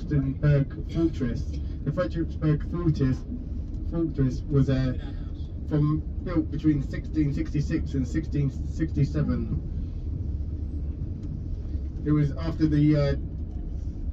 Fortress. The Frederiksberg Fortress was built between 1666 and 1667. It was after the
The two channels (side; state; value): both; identical; correlation 1.00